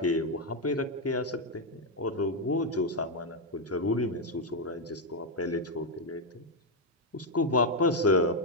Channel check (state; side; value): normal; both; correlation 0.01